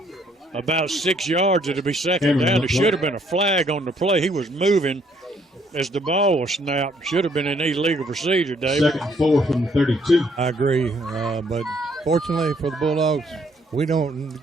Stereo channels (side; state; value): both; normal; correlation 0.66